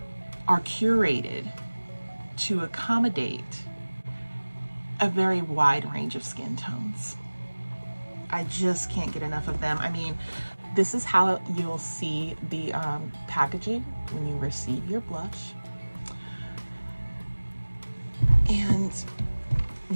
are curated to accommodate a very wide range of skin tones. I just can't get enough of them. I mean, this is how you'll see the packaging when you receive your blush. And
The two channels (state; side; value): inverted; both; correlation -1.00